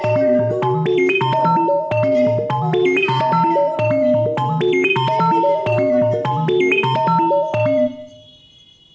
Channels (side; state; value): both; identical; correlation 1.00